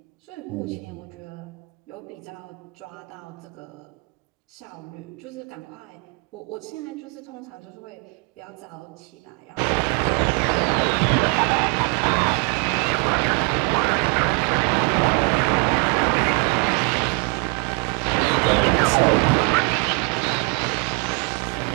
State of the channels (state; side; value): quieter; left; 31.9 dB